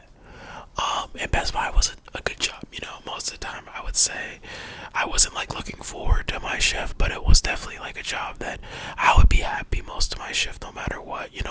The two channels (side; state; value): both; identical; correlation 1.00